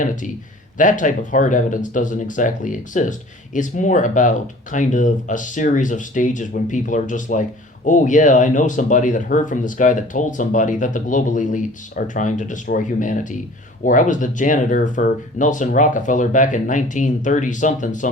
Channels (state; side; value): normal; both; correlation 0.47